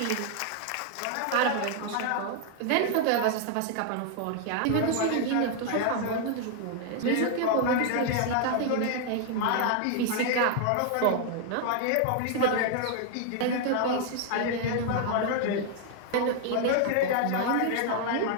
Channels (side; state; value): both; different; correlation 0.00